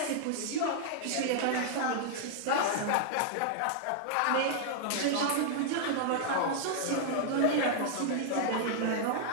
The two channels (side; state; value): both; different; correlation -0.01